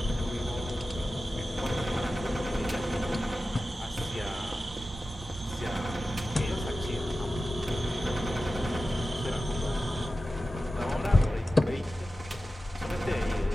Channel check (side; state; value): both; normal; correlation 0.94